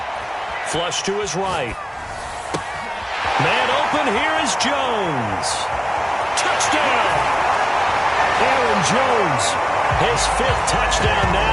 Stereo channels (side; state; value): both; identical; correlation 1.00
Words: Flush to his right. Man open, here is Jones. Touchdown! Aaron Jones, his 5th touchdown